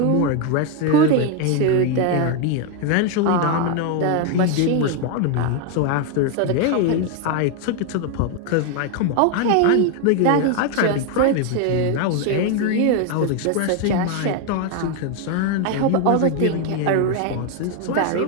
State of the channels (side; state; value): both; different; correlation 0.01